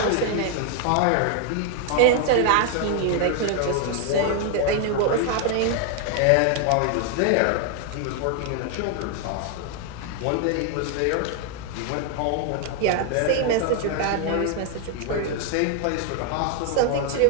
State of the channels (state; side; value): different; both; correlation 0.00